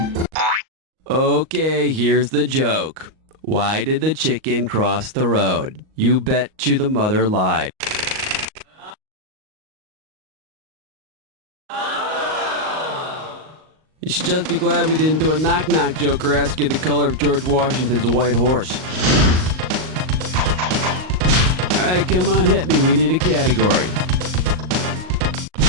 Okay, here's the joke. Why did the chicken cross the road? You bet you the mother lied. You should just be glad we didn't do a knock-knock joke or ask you the color of George Washington's white horse. All right, come on, hit me. We need a category.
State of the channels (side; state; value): left; late; 38 ms